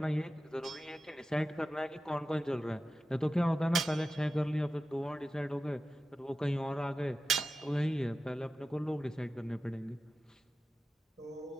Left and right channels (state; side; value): normal; both; correlation 0.94